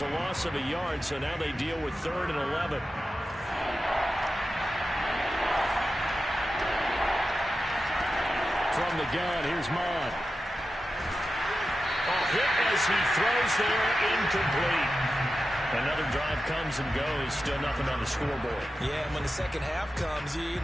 loss of a yard, so now they deal with 3rd and 11. From the gun, here's Mon. A hit as he throws there, incomplete. Another drive comes and goes, still nothing on the scoreboard. Yeah, and when the second half comes, you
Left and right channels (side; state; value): both; normal; correlation 0.92